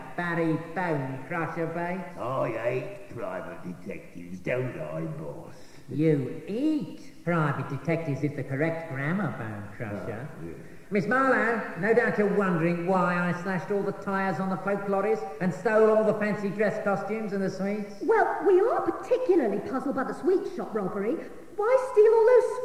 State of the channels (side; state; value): both; identical; correlation 1.00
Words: Barry Bone Crusher Bates? I hate private detectives, don't I, boss? You eat private detectives is the correct grammar, Bone Crusher. Yeah. Miss Marlowe, no doubt you're wondering why I slashed all the tyres on the folk lorries and stole all the fancy dress costumes and the sweets. Well, we are particularly puzzled by the sweet shop robbery. Why steal all those